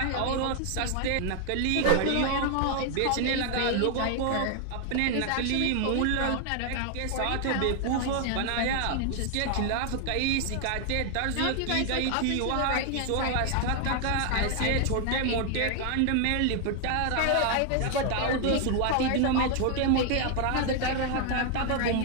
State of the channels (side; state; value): both; different; correlation 0.00